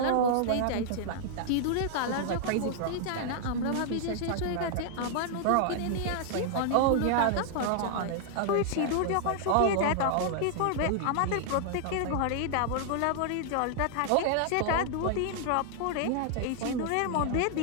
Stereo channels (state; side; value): different; both; correlation -0.01